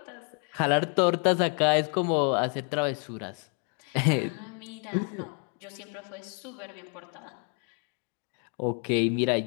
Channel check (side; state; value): right; quieter; 39.2 dB